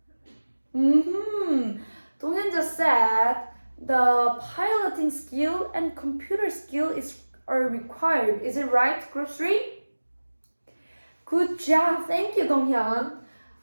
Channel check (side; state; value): both; inverted; correlation -1.00